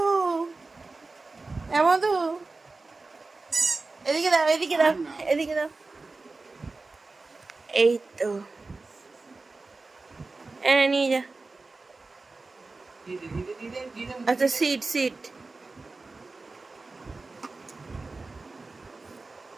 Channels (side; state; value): left; quieter; 3.6 dB